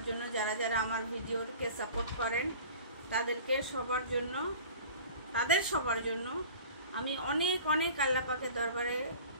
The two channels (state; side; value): inverted; both; correlation -0.43